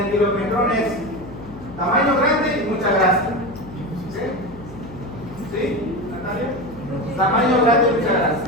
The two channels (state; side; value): noise; left; hum, 17 dB below the sound